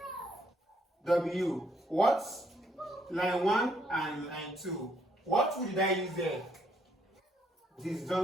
W. What's line 1 and line 2? What would I use there?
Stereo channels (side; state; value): both; normal; correlation 0.71